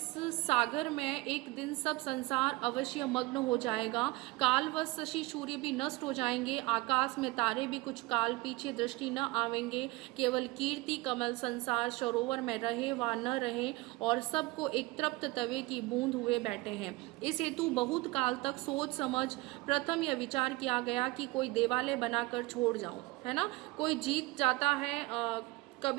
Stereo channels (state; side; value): quieter; left; 21.7 dB